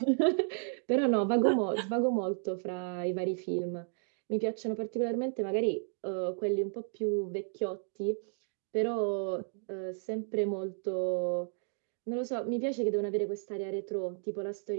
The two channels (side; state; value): left; silent; 56 dB below the other